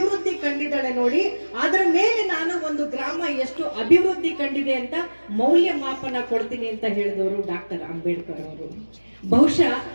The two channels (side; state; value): both; inverted; correlation -1.00